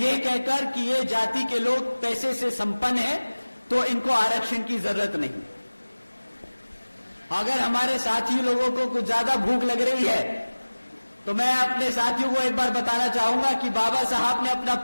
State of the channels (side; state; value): both; inverted; correlation -1.00